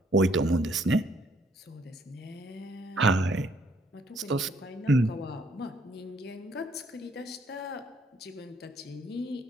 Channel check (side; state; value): both; normal; correlation 0.67